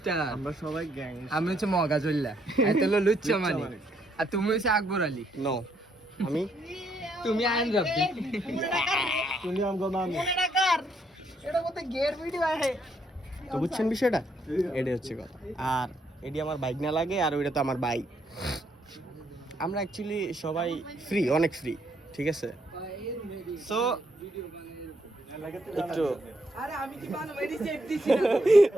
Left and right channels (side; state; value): both; normal; correlation 0.73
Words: আমরা সবাই গ্যাংস্টার। আমি হচ্ছে মগাজুল্লাহ, এত হলো লুচ্চা মানিক, আর তুমি হচ্ছে আকবর আলী। নো, আমি তুমি আইন রাব্বি। তুমি আমগো মামি। তো বুঝছেন বিষয়টা, এটাই হচ্ছে কথা। আর এটি আমার বাইক না লাগে, আর ওইটা তো আমার বাইক। আমরা অ্যাকচুয়ালি সবাই ফ্রি, অনেক ফ্রি, ঠিক আছে। সো একটু